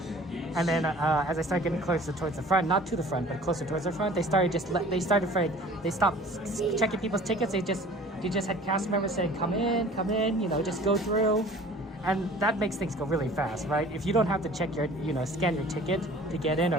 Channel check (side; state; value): both; normal; correlation 0.47